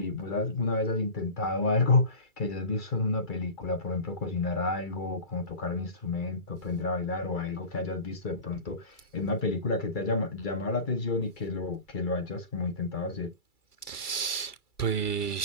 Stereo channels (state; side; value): late; right; 2.3 ms